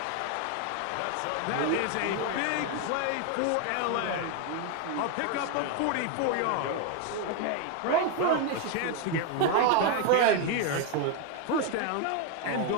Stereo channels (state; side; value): different; both; correlation 0.01